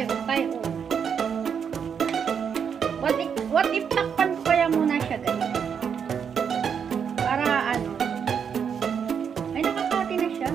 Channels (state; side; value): quieter; left; 7.2 dB